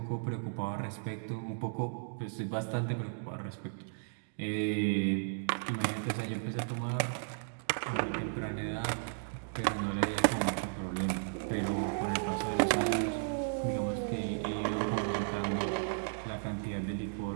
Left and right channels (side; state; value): left; silent; digital silence